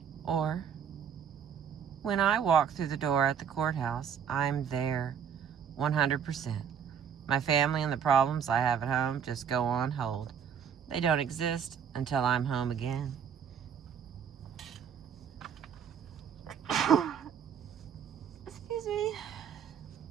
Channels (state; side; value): quieter; left; 7.8 dB